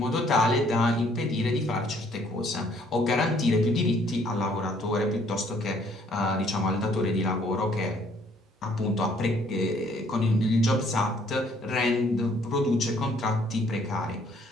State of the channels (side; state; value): both; normal; correlation 0.63